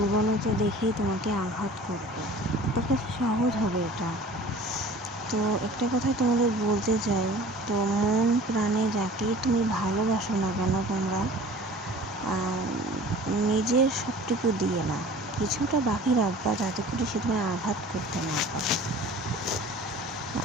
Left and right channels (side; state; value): both; normal; correlation 0.45